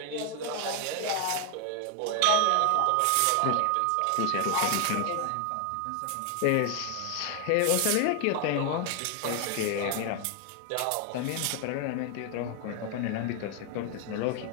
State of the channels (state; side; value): different; both; correlation 0.00